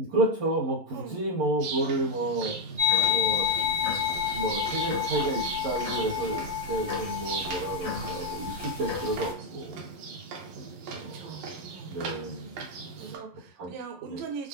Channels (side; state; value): left; late; 11 ms